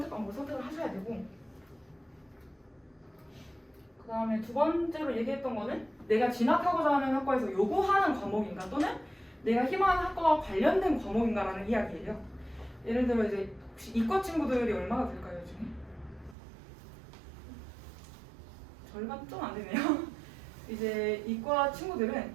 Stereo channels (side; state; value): left; drops out; at 16.4 s